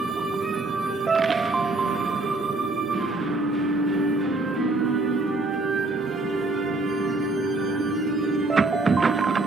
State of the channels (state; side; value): quieter; left; 3.0 dB